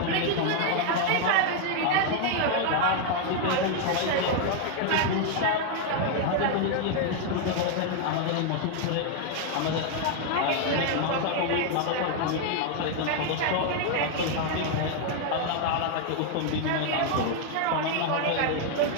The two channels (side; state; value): both; different; correlation 0.00